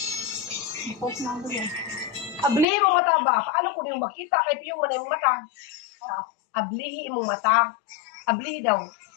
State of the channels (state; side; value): drops out; right; at 2.7 s